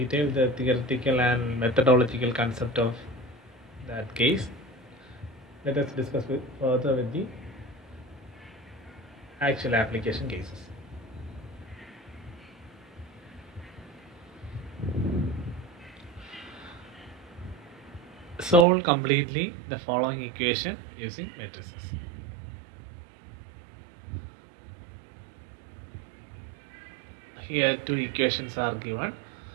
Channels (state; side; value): drops out; left; at 18.7 s